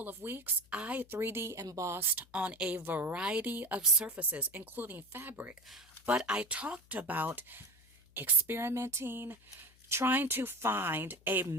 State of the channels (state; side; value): noise; left; hum, 28 dB below the sound